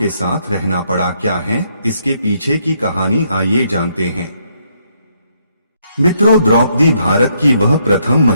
साथ रहना पड़ा? क्या है इसके पीछे की कहानी, आइए जानते हैं। मित्रों, द्रौपदी भारत की वह प्रथम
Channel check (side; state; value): both; inverted; correlation -0.73